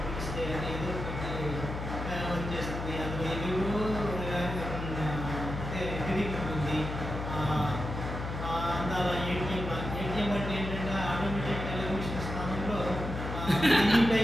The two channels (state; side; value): noise; left; hum, 5 dB below the sound